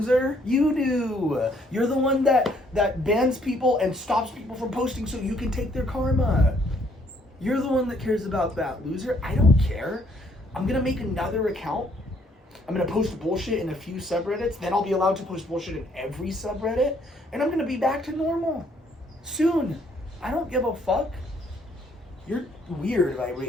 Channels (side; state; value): both; normal; correlation 0.66